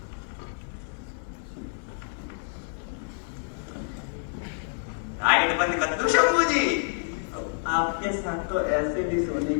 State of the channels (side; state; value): right; silent; digital silence